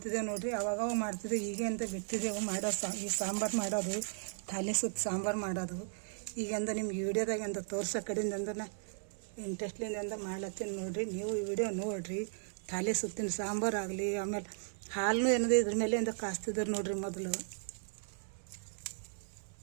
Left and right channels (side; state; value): left; silent; 54 dB below the other